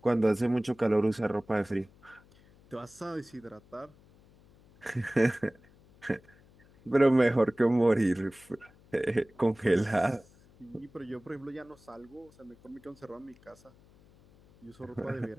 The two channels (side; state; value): left; noise; hum, 27 dB below the sound